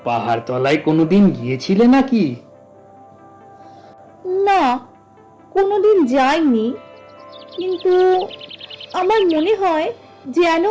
পাহাড় তলায় কোনোদিন গিয়েছিলে নাকি? না, কোনোদিন যাইনি, কিন্তু আমার মনে হয় যেন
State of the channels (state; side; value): identical; both; correlation 1.00